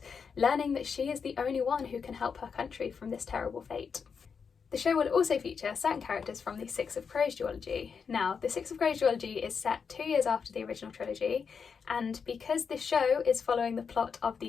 learning that she is the only one who can help her country from this terrible fate. The show will also feature certain characters from the Six of Crows duology. Now, the Six of Crows duology is set 2 years after the original trilogy, and because this show is following the plot of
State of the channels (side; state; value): right; quieter; 6.0 dB